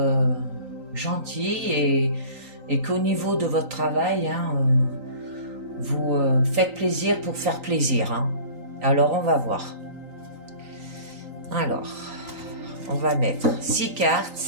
gentil et qu'au niveau de votre travail, hein, vous faites plaisir pour faire plaisir. Hein. Alors, on va voir. Alors, on va mettre 6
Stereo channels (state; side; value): late; left; 3.9 ms